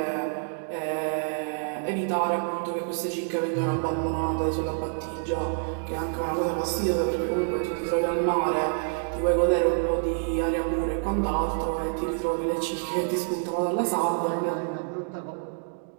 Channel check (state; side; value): silent; left; digital silence